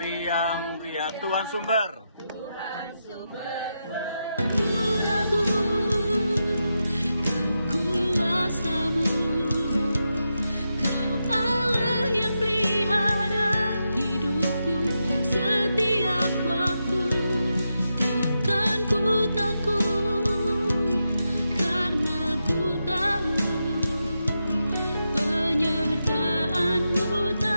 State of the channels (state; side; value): inverted; both; correlation -0.87